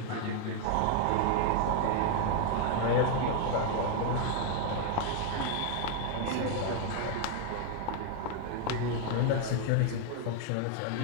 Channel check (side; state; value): both; different; correlation 0.00